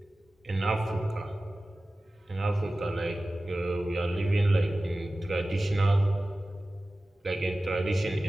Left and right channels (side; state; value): both; normal; correlation 0.96